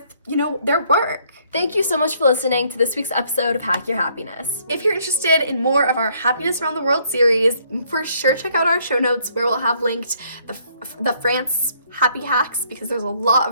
their work. Thank you so much for listening to this week's episode of Hack Your Happiness. If you're interested in more of our Happiness Around the World series, for sure check out our show notes where we'll have linked the France happy hacks, because there's a lot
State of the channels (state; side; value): inverted; both; correlation -0.66